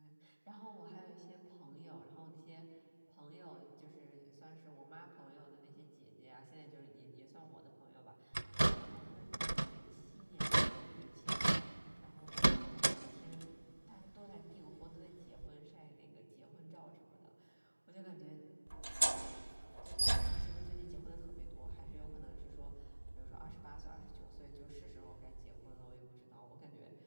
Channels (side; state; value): both; inverted; correlation -1.00